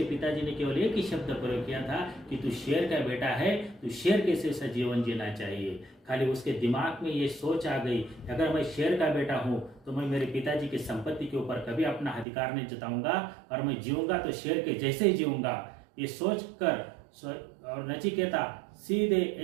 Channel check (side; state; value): left; drops out; at 12.2 s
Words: पिताजी ने केवल एक ही शब्द प्रयोग किया था कि तू शेर का बेटा है, तू शेर के जैसा जीवन जीना चाहिए। खाली उसके दिमाग में ये सोच आ गई, अगर मैं शेर का बेटा हूँ तो मैं मेरे पिताजी की संपत्ति के ऊपर कभी अपना अधिकार नहीं जताऊंगा और मैं जीऊंगा तो शेर के जैसे ही जीऊंगा। ये सोच कर और नचिकेता सीधे